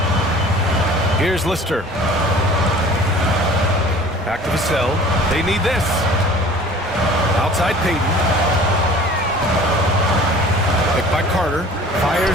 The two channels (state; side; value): normal; both; correlation 0.46